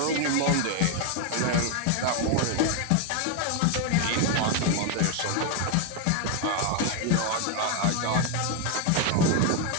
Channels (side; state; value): both; different; correlation 0.01